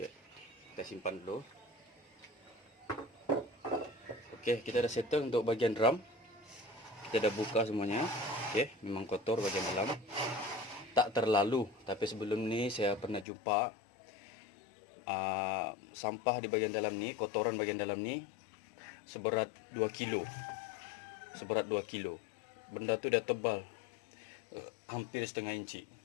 kita simpan dulu. Oke, kita dah settle untuk bagian drum. Kita dah buka semuanya. Oke, memang kotor bagian dalam. Tak terlalu, tapi sebelum ni saya pernah jumpa sampah di bagian dalam ni, kotoran bagian dalam ni seberat 2 kilo. Seberat 2 kilo. Benda tu dah tebal, hampir setengah inci.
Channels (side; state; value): right; drops out; at 13.2 s